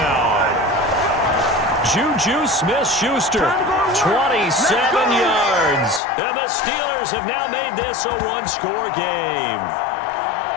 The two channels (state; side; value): drops out; right; at 6.0 s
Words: Juju Smith-Schuster, 27 yards. And the Steelers have now made this a 1-score game.